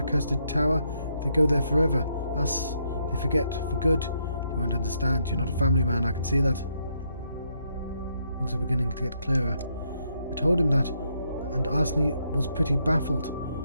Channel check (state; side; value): inverted; both; correlation -0.76